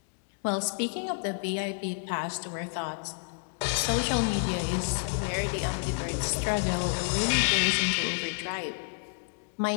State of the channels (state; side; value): silent; right; digital silence